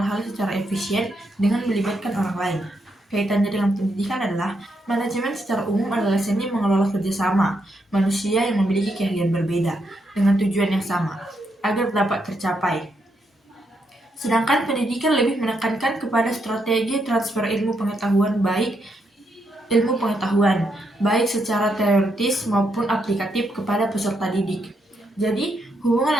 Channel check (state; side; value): normal; both; correlation 0.79